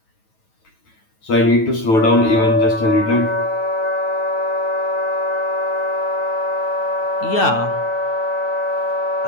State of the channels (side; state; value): right; late; 9.2 ms